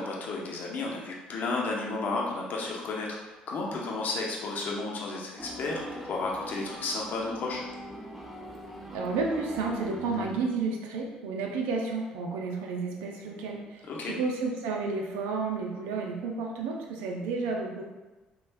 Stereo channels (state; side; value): normal; both; correlation 0.43